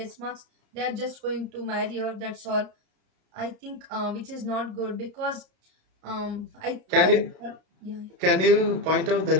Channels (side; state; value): left; late; 32 ms